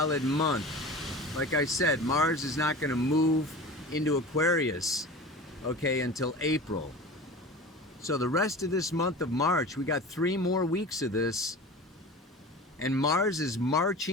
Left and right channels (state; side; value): normal; both; correlation 0.35